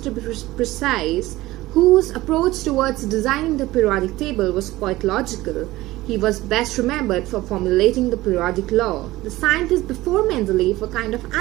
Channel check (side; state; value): left; quieter; 17.8 dB